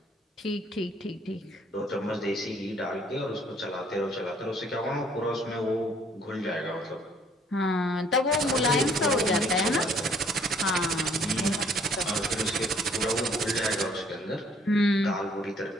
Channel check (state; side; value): normal; both; correlation 0.61